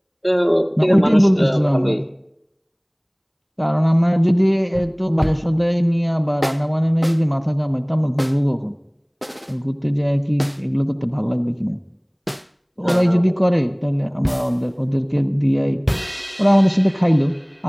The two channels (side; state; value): both; identical; correlation 1.00